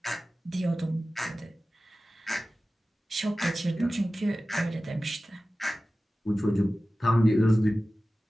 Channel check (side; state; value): both; normal; correlation 0.96